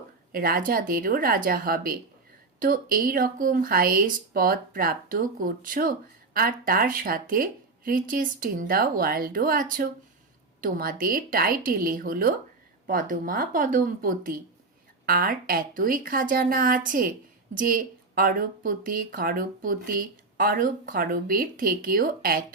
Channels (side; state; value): left; quieter; 3.8 dB